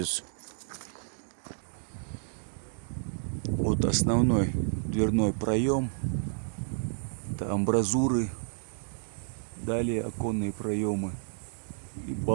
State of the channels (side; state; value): left; silent; digital silence